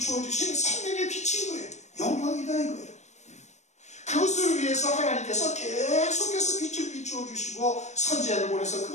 주신 생명의 빛인 거예요. 영광이다 이거예요. 그것을 위해서 하나님께서 계속해서 빛을 비추어 주시고 선지자를 보내서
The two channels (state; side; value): late; right; 0.34 ms